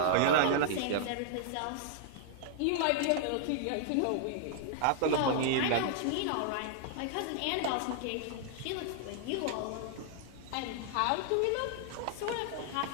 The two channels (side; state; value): both; different; correlation -0.01